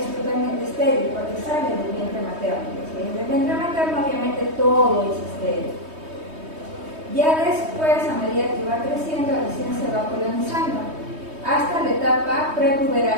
totalmente estéril porque sale del vientre materno. ¿Sí? Del vientre materno obviamente todo es estéril. Ya después, a medida que va creciendo, recién se va colonizando hasta la etapa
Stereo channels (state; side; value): late; left; 3.2 ms